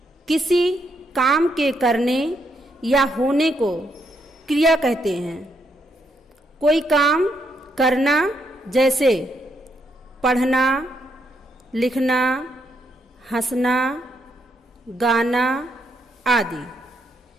किसी काम के करने या होने को क्रिया कहते हैं। कोई काम करना जैसे पढ़ना, लिखना, हंसना, गाना आदि,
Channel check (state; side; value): normal; both; correlation 0.77